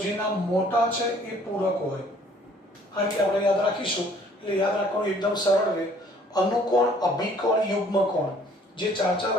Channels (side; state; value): both; normal; correlation 0.58